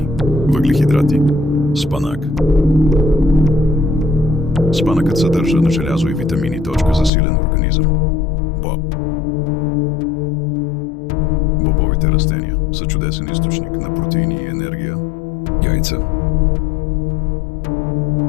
въглехидрати. Спанак. Спанъкът съдържа на желязо и витамини, за силен организъм. Боб. Бобовите растения са чудесен източник на протеини и енергия. Яйца.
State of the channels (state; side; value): drops out; right; at 7.1 s